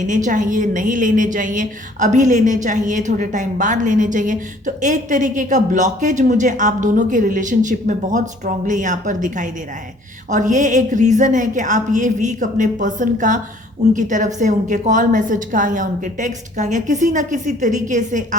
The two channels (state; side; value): normal; both; correlation 0.56